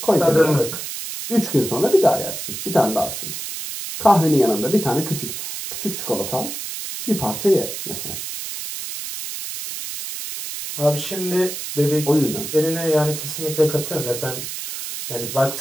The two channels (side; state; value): right; noise; hiss, 7 dB below the sound